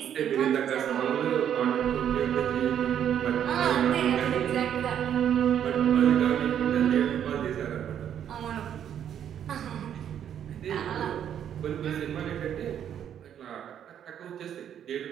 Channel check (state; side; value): quieter; left; 9.5 dB